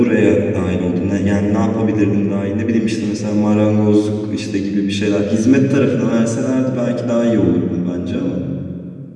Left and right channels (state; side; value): identical; both; correlation 1.00